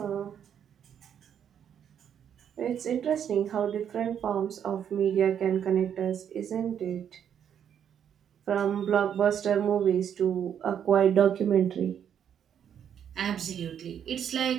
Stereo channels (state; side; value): quieter; left; 8.8 dB